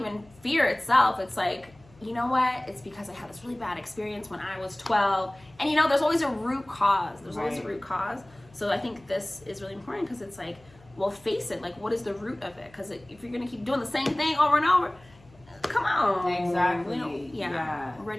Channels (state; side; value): noise; left; hum, 26 dB below the sound